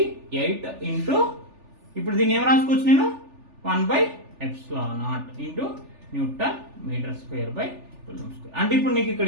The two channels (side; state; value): left; late; 3.4 ms